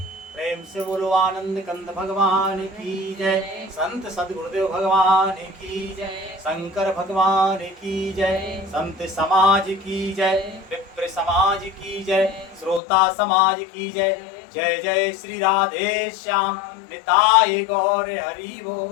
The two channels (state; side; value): drops out; right; at 12.8 s